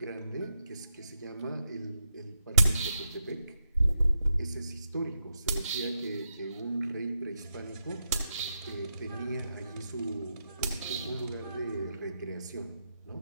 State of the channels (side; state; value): both; inverted; correlation -0.85